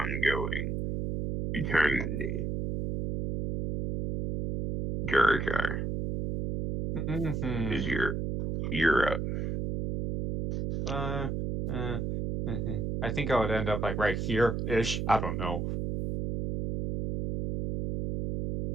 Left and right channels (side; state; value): right; noise; hum, 2 dB below the sound